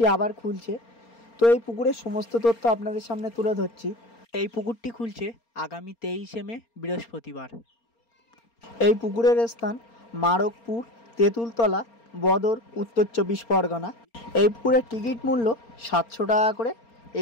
আবার খুলছে। তো এই পুকুরের সমস্ত তথ্য আপনাদের সামনে তুলে ধরছি। এই পুকুরটি খুলছে আগামী 23শে মে বৃহস্পতিবার। এই পুকুরের স্থান মারকপুর, তেঁতুলতলা, বদর, উত্তর 24 পরগনা। এই পুকুরের টিকিট মূল্য 700 টাকা করে।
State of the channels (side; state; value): right; late; 4.3 ms